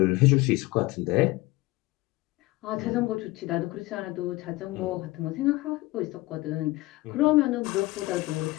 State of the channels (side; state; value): right; quieter; 20.2 dB